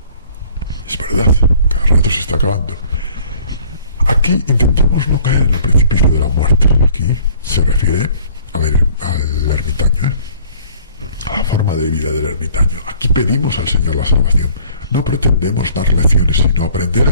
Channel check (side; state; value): both; inverted; correlation -0.54